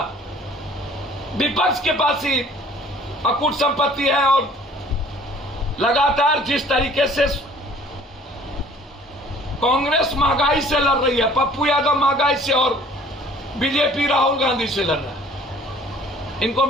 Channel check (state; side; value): normal; both; correlation 0.53